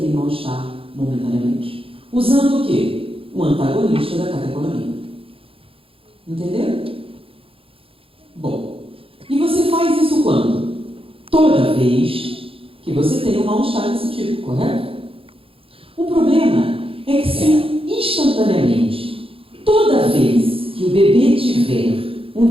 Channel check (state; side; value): late; left; 0.27 ms